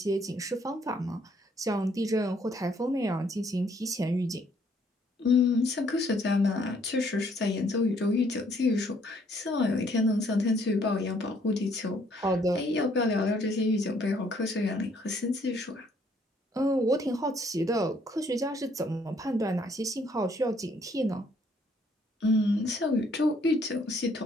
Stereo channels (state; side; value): normal; both; correlation 0.65